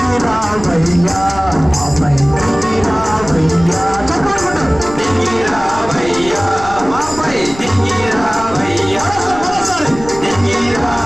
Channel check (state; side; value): noise; left; rumble, 15 dB below the sound